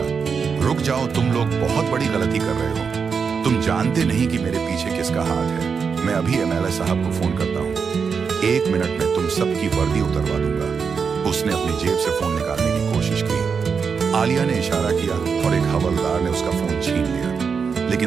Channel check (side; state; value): left; quieter; 5.9 dB